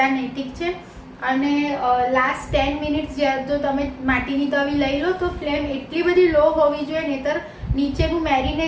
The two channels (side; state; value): both; identical; correlation 1.00